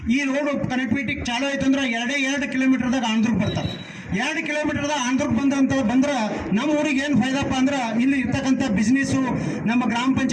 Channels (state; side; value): identical; both; correlation 1.00